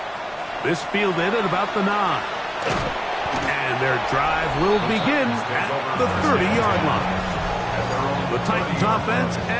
This fielded at about the 9. And their drive will begin at the 30-yard line. The Titans offense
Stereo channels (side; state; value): both; identical; correlation 1.00